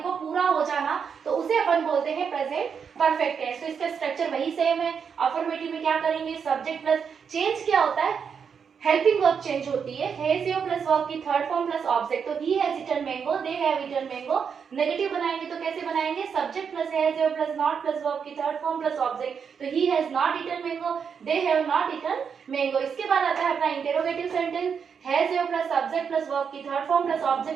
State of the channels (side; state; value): left; quieter; 6.7 dB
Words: को पूरा हो जाना, तो उसे अपन बोलते हैं प्रेजेंट परफेक्ट टेंस। तो इसका स्ट्रक्चर वही सेम है। अफर्मेटिव में क्या करेंगे, सब्जेक्ट प्लस चेंज क्या होता है, हेल्पिंग वर्ब चेंज होती है, हैज योर प्लस वर्ब की थर्ड फॉर्म प्लस ऑब्जेक्ट। तो he has eaten mango, they have eaten mango. Negative बनाएंगे तो कैसे बनाएंगे, subject plus has have plus not plus verb की थर्ड फॉर्म प्लस ऑब्जेक्ट। तो he has not eaten mango, they have not eaten mango. इसके बाद आता है अपना interrogative sentence, has have plus subject plus verb की third form plus